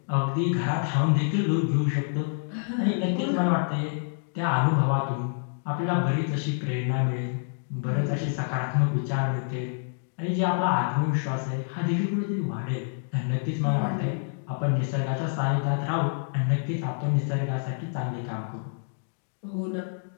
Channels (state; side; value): silent; right; digital silence